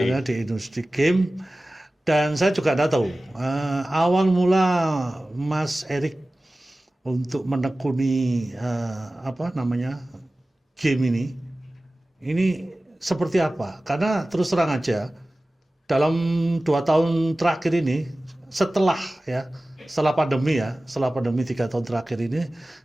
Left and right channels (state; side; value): normal; both; correlation 0.97